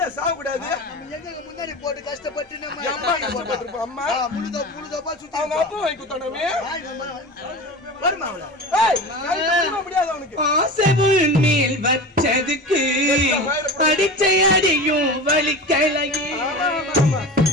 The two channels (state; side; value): normal; both; correlation 0.31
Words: சாக கூடாது. முன்னாடி போட்டு கஷ்டப்பட்டு அம்மா அவங்க அப்பா வாங்கி கொடுத்தானே முடியாது அவனுக்கு. ஆசைவுள் மேல் வச்சதுக்கு அடிச்சை அடியும் வலிக்கலையே.